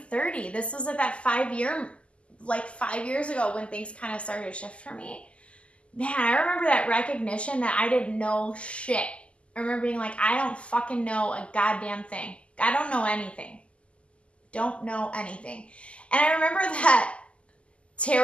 30. This was at that 5 years ago when things kind of started to shift for me. Man, I remember that recognition that I didn't know shit. I remember being like, I don't fucking know a goddamn thing. I don't know anything. Don't know anything. And I remember that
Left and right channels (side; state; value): right; late; 0.056 ms